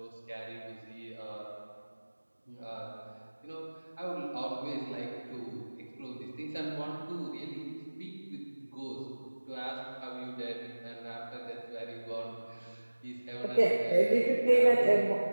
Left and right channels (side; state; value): both; inverted; correlation -1.00